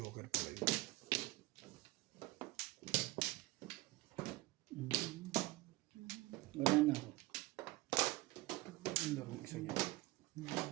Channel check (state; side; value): quieter; left; 19.5 dB